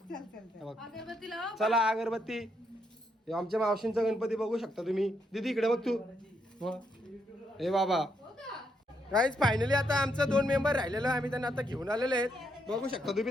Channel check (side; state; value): both; normal; correlation 0.77